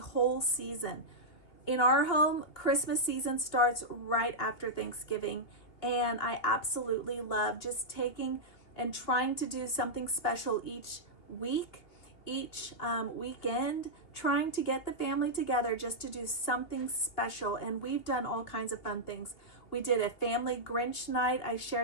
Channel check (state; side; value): late; right; 2.8 ms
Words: season. In our home, Christmas season starts right after Thanksgiving, and I absolutely love just taking and trying to do something special each week, each weekend, trying to get the family together just to do something special. And we've done all kinds of fun things. We did a family Grinch night. I